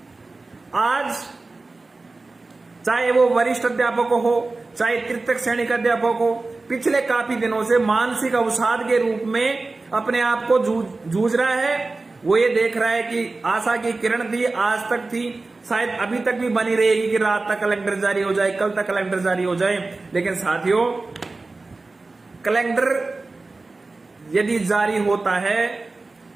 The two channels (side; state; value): left; quieter; 3.5 dB